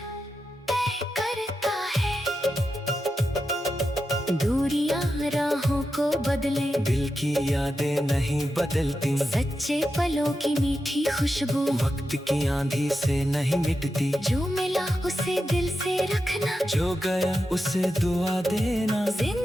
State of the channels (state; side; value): normal; both; correlation 0.89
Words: तय करता है। दूरियां राहों को बदले, दिल की यादें नहीं बदलती। सच्चे पलों की मीठी खुशबू वक्त की आंधी से नहीं मिटती। जो मिला उसे दिल से रखना, जो गया उसे दुआ देना।